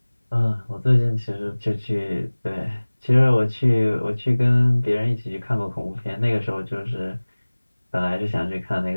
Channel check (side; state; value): both; inverted; correlation -1.00